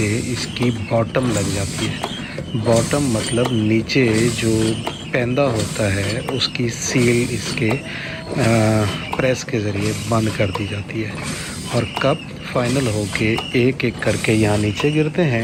इसकी बॉटम लग जाती है। बॉटम मतलब नीचे जो पैंदा होता है उसकी सील इसके प्रेस के ज़रिए बंद कर दी जाती है और कप फाइनल होके एक एक करके यहाँ नीचे गिरते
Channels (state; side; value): identical; both; correlation 1.00